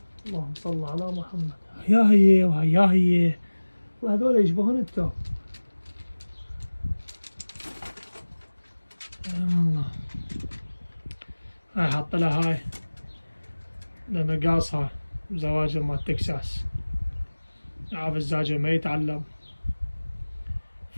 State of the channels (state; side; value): inverted; both; correlation -1.00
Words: اللهم صل على محمد. يا هي ويا هي، وهذول يشبهون التو. والله هاي حاط لها هاي لأنه قاصها زواج مال تكساس، عارف الزاجل ما يتعلم،